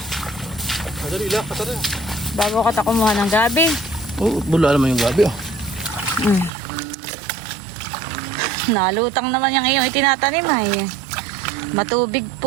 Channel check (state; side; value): drops out; left; at 6.5 s